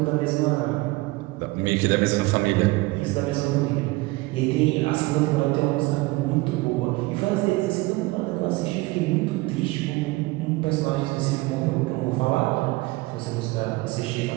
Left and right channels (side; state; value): left; quieter; 22.1 dB